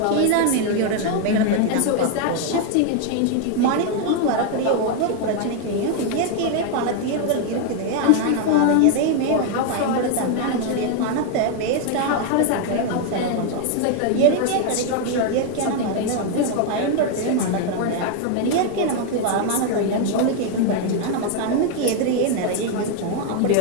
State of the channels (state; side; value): different; both; correlation 0.01